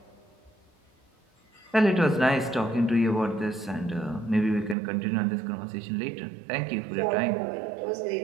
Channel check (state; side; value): drops out; left; at 4.8 s